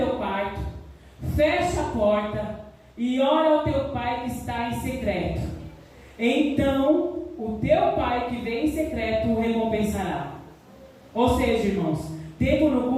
quarto, fecha a porta e ora ao teu pai que está em secreto. Então o teu pai que vem em secreto o recompensará. Ou seja, irmãos, tempo no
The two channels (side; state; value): both; identical; correlation 1.00